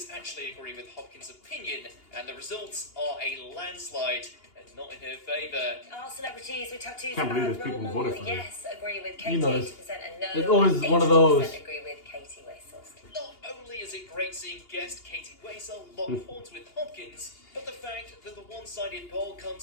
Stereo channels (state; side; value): late; right; 2.8 ms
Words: actually agree with Hopkins' opinion, and the results are a landslide, and not in her favour. Are celebrities with tattoos Can't believe a there's bad people role who model? voted for her. Yes, agree with Katie, You know, 80% and no. there's always one of those. 80% agree with Katie Wessels. Not only is it great seeing guest Katie Waisel lock horns with Hopkins, but the fact that the one-sided poll